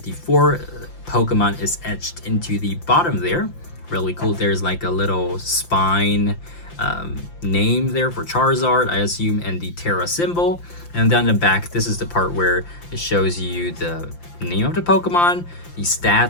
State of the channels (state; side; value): late; right; 5.8 ms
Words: Pokemon is etched into the bottom there. Really cool. There's like a little spine name there for Charizard, I assume, and the Tera symbol. And down the back, this is the part where it shows you the name of the Pokemon, the